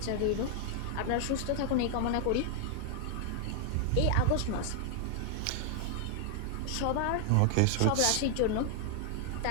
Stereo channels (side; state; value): both; different; correlation 0.00